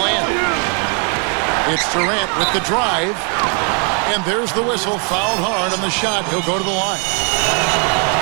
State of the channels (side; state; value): left; quieter; 38.0 dB